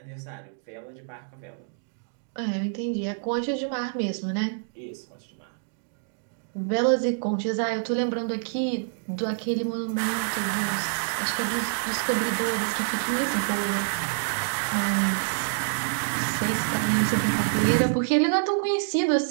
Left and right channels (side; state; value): left; silent; digital silence